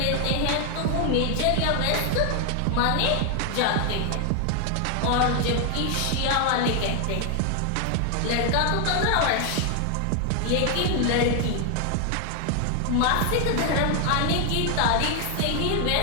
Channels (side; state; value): both; different; correlation 0.00